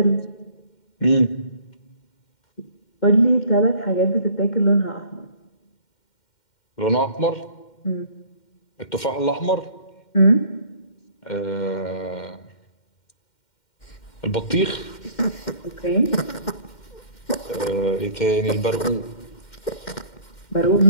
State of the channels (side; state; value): right; late; 2.1 ms